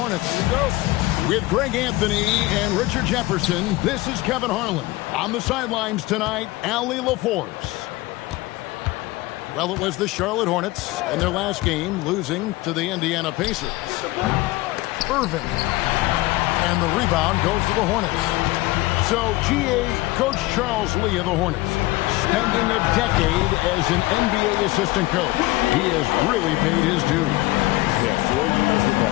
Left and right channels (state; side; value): quieter; right; 19.7 dB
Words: Here we go. With Greg Anthony and Richard Jefferson, this is Kevin Harlan. On the sidelines tonight, Allie LaForce. Well, it was the Charlotte Hornets in their last game, losing to the Indiana Pacers. Irving. And the rebound goes to the Hornets. So, GA Coach Charles Lee of the Hornets, spending a decade as an NBA assistant coach. He has really paid his dues. Yeah, 4 years with the